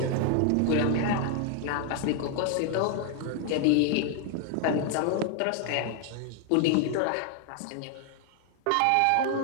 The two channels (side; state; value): both; different; correlation 0.00